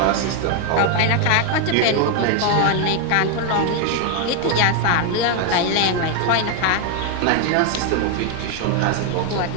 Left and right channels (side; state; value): both; different; correlation 0.01